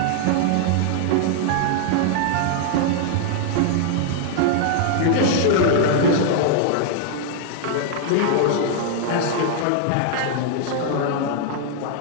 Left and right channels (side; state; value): both; different; correlation 0.00